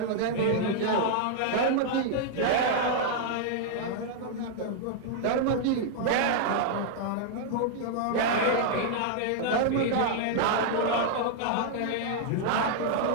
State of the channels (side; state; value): both; different; correlation -0.01